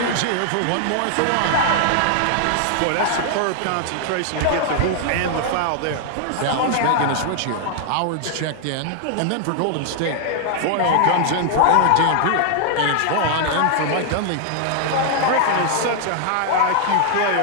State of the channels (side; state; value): both; different; correlation 0.00